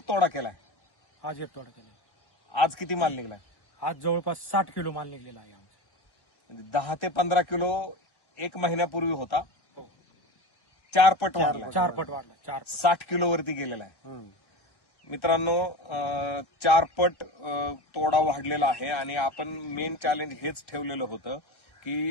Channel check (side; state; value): right; late; 1.1 ms